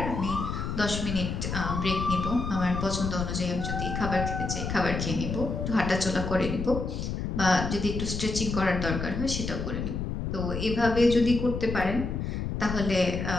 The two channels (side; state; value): left; noise; rumble, 3 dB below the sound